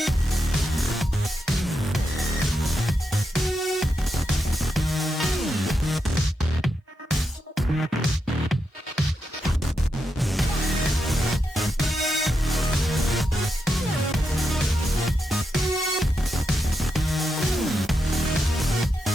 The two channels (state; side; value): normal; both; correlation 0.85